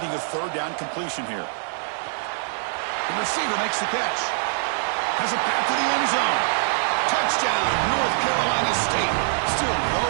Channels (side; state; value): left; silent; 63 dB below the other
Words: a third down completion here. The receiver makes the catch. Has a pass to the end zone. Touchdown, North Carolina State. Still no